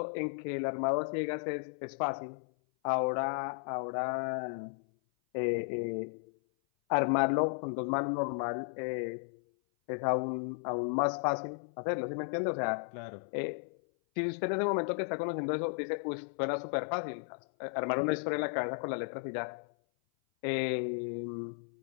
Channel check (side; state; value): right; silent; 55 dB below the other